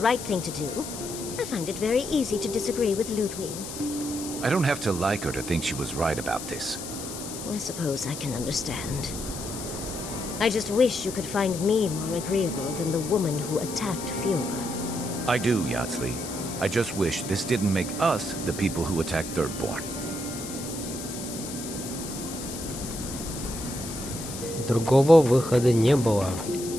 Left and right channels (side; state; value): left; noise; hiss, 9 dB below the sound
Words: right thing to do, I find it very easy to disagree with Ludwig. I don't have to like her to think she was right about this. I suppose I can understand. I just wish you could find me more agreeable than the woman who attacked Fiora. I do, Yatsley. I just wish this didn't make us the people who attacked Thirdborn. Другого выхода не было.